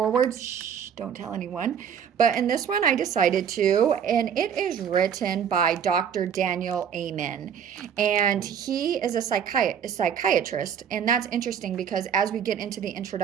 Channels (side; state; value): left; quieter; 8.0 dB